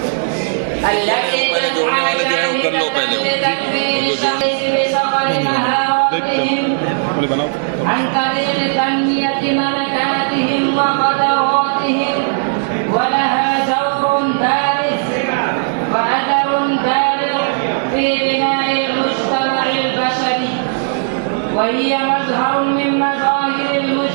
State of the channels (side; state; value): left; silent; digital silence